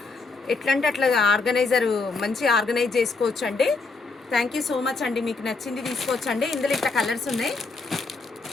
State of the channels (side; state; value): right; quieter; 4.0 dB